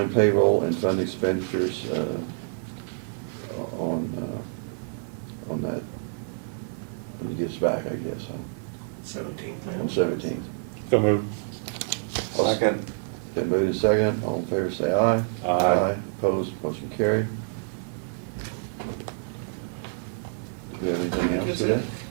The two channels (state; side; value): silent; left; 60 dB below the other